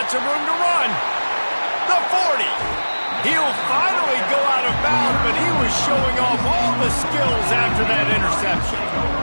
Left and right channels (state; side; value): inverted; both; correlation -1.00